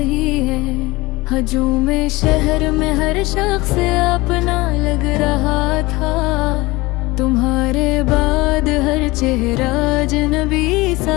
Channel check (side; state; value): right; quieter; 21.5 dB